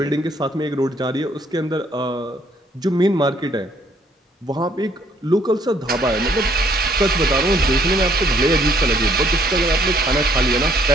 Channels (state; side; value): normal; both; correlation 0.65